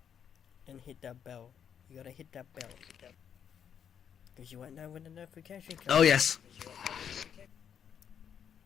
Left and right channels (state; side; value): quieter; right; 8.2 dB